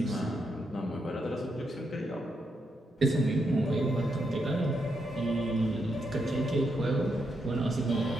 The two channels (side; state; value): both; normal; correlation 0.81